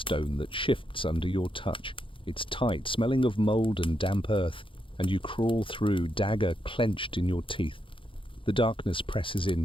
that shifts under your touch. It's tight, smelling of mold and damp earth, and you crawl through, dagger clenched in your teeth. The darkness presses in,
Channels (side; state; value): right; late; 0.25 ms